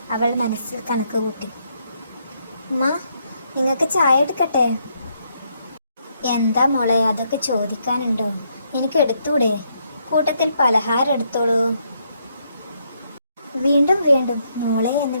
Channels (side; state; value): both; inverted; correlation -0.75